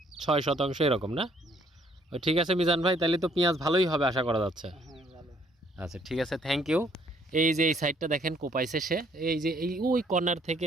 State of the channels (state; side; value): normal; both; correlation 0.65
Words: ৬ শতাংশ এরকম না? ঠিক আছে মিজান ভাই, তাহলে তো পেঁয়াজ ভালোই হবে আশা করা যাচ্ছে। আচ্ছা ঠিক আছে, থ্যাংক ইউ। এই যে এই সাইডটা দেখেন কোপাইছে সে, এই যে এই ওই কর্নার থেকে